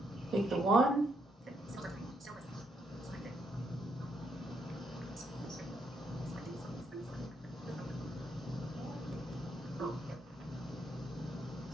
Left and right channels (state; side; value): normal; both; correlation 0.76